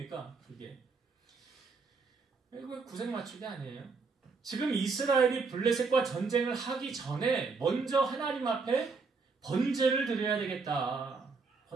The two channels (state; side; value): quieter; left; 4.5 dB